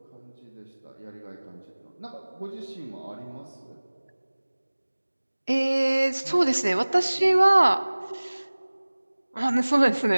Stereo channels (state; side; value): inverted; both; correlation -1.00